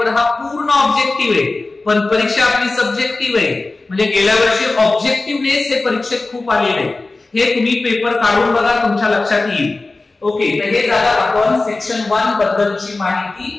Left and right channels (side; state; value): right; quieter; 3.3 dB